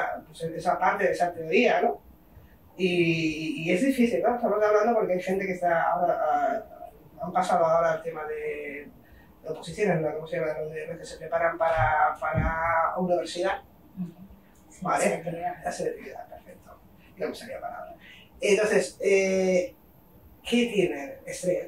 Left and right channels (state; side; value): identical; both; correlation 1.00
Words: parte de esa teoría, ¿no? Y es difícil, ¿no? Estamos hablando porque hay gente que está ahora, han pasado ahora al tema de oposiciones, ¿no? ¿Cómo se llama? Los que se preparan para universidad. Sí, ¿vale? La selectividad, perfecto. No me salía palabra. Entonces, ¿qué tienen?